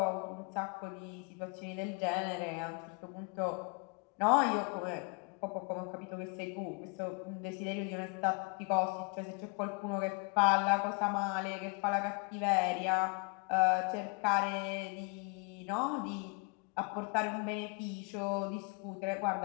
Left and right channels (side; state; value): right; quieter; 32.4 dB